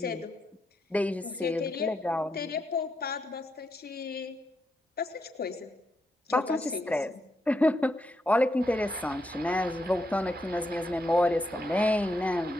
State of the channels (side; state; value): both; normal; correlation 0.81